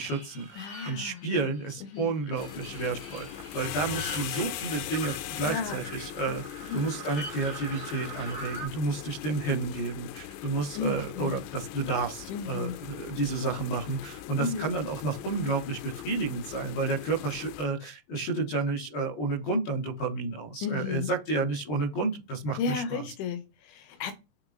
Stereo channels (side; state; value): right; late; 20 ms